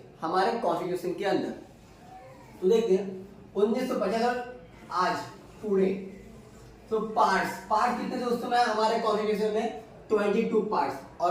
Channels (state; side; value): identical; both; correlation 1.00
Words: हमारे कॉन्स्टिट्यूशन के अंदर। तो देखते हैं 1950 और आज पूरे। तो पार्ट कितने थे उस समय हमारे कॉन्स्टिट्यूशन में? 22 पार्ट्स।